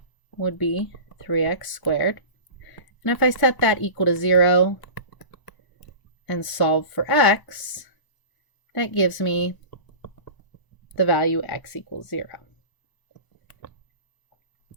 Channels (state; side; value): late; right; 1.0 ms